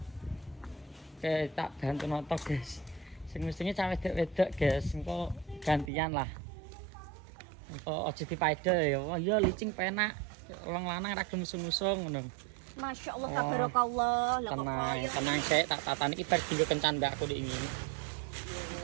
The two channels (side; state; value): left; drops out; at 5.9 s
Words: Oke, tak bantu noto guys. Sing mestinya cawe wedok guys, engko gantian lah. Engko aja dipaida ya. Wah, iya licing penak. Wong lanang ra gelem usung-usung ngono. Masya Allah Oh. tabarakallah. Lah kok Tenang, kaya tenang sik tak tatani iki bar dinggo kencan mbak aku dik ngene.